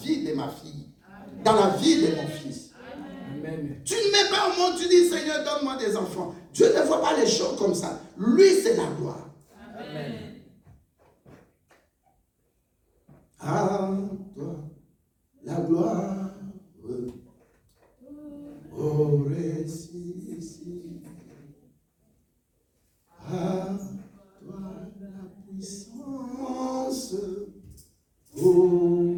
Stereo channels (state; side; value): identical; both; correlation 1.00